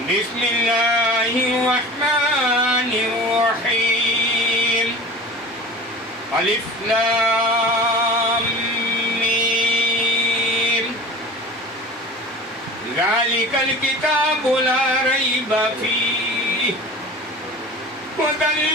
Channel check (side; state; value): both; normal; correlation 0.37